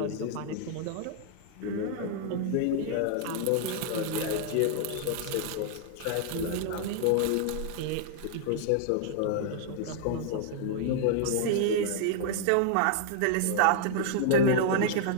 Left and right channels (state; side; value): different; both; correlation -0.01